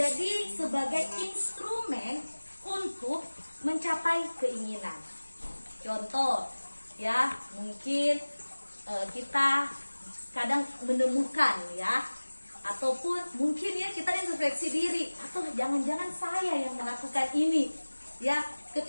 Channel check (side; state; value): both; inverted; correlation -1.00